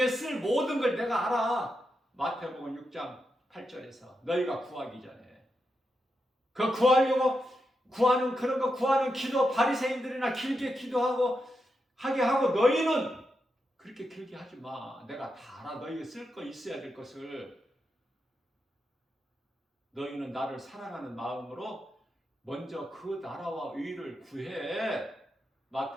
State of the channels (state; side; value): normal; both; correlation 0.86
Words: 쓸 모든 걸 내가 알아. 마태복음 6장 8절에서 너희가 구하기 전에. 그 구하려고 구하는 그런 거 구하는 기도 바리새인들이나 길게 기도하고 하게 하고 너희는 그렇게 길게 하지 마. 내가 다 알아. 너희가 쓸 거 있어야 될 것을. 너희는 나를 사랑하는 마음으로 먼저 그 나라와 의를 구해.